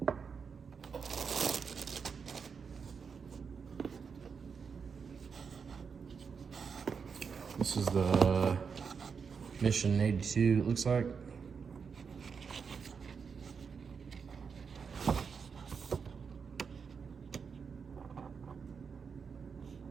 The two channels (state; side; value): quieter; left; 5.9 dB